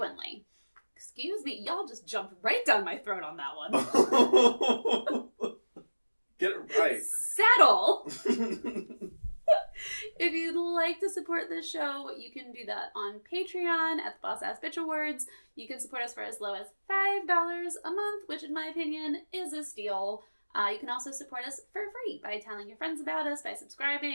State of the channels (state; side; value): inverted; both; correlation -1.00